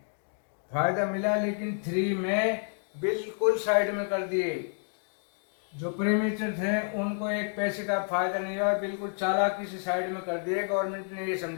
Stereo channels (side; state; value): right; silent; 58 dB below the other